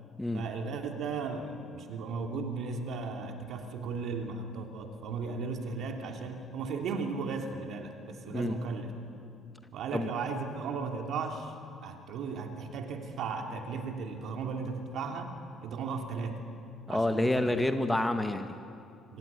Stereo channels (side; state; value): both; normal; correlation 0.69